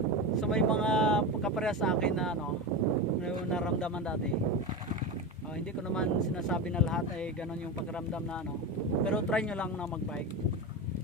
So may mga kaparehas sa akin na ano, na naramdaman dati. Hindi ko naman sinasabi na lahat ay ganon yung pakiramdam na ano. Pero try nyo lang na mag-bike.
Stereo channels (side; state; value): right; noise; hum, 28 dB below the sound